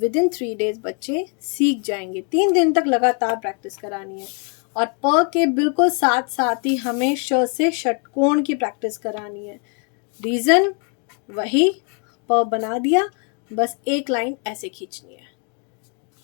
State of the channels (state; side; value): quieter; right; 37.9 dB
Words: इन 3 डेज बच्चे सीख जाएंगे। 3 दिन तक लगातार प्रैक्टिस करानी है। और प के बिल्कुल साथ साथ ही हमें श से षटकोण की प्रैक्टिस करानी है। रीजन वही, प बना दिया, बस एक लाइन ऐसे खींचनी है।